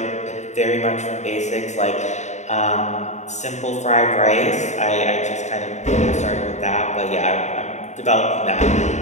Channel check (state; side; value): late; right; 0.34 ms